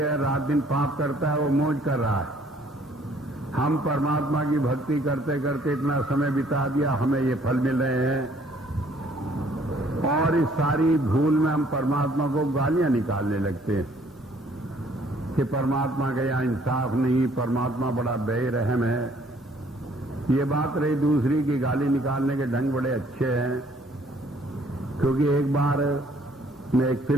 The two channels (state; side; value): normal; both; correlation 0.62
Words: रात दिन पाप करता है, वो मौज कर रहा है। हम परमात्मा की भक्ति करते करते इतना समय बिता दिया, हमें ये फल मिल रहे हैं। और इस सारी भूल में हम परमात्मा को गालियां निकालने लगते हैं कि परमात्मा का यहाँ इंसाफ नहीं, परमात्मा बड़ा बेरहम है। ये बात रही दूसरी की गाली निकालने के ढंग बड़े अच्छे हैं, क्योंकि एक बार मैं एक